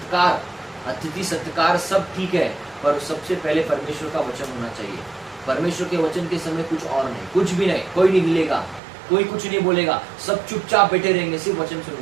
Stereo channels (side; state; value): left; drops out; at 8.8 s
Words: अतिथि सत्कार सब ठीक है, पर सबसे पहले परमेश्वर का वचन होना चाहिए। परमेश्वर के वचन के समय कुछ और नहीं, कुछ भी नहीं, कोई नहीं मिलेगा, कोई कुछ नहीं बोलेगा, सब चुपचाप बैठे रहेंगे, सिर्फ वचन